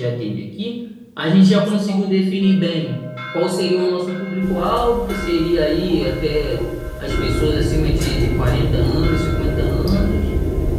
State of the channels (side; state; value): both; identical; correlation 1.00